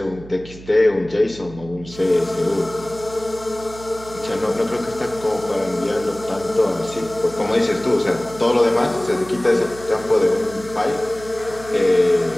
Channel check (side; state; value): right; noise; hum, 17 dB below the sound